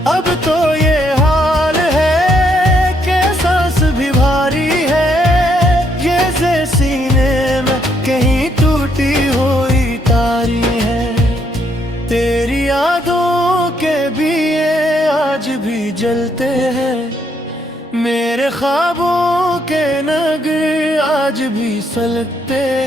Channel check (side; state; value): both; normal; correlation 0.73